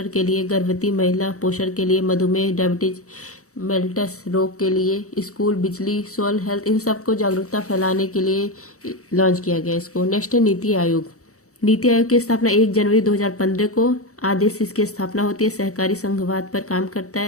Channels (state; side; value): late; right; 0.65 ms